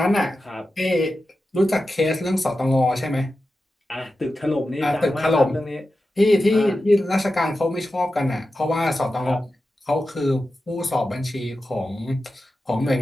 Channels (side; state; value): both; normal; correlation 0.92